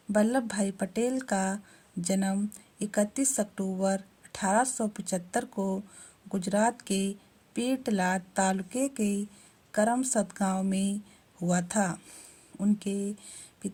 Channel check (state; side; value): identical; both; correlation 1.00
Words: वल्लभ भाई पटेल का जन्म 31 अक्टूबर 1875 को गुजरात के पेटलाद तालुके के करमसद गांव में हुआ था। उनके